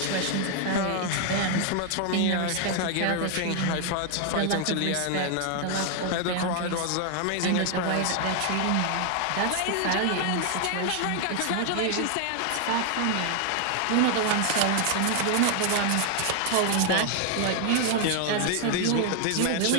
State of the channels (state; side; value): different; both; correlation 0.00